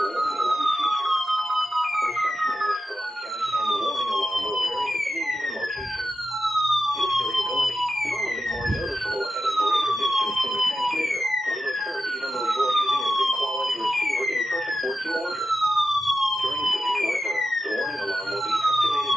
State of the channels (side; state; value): both; normal; correlation 0.91